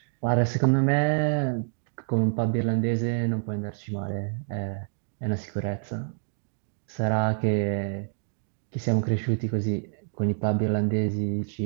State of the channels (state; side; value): silent; left; 60 dB below the other